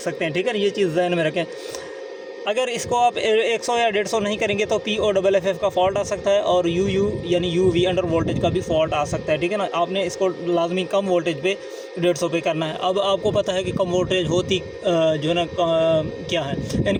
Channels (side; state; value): both; identical; correlation 1.00